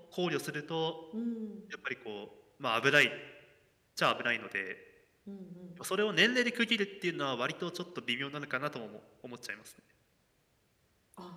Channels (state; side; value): identical; both; correlation 1.00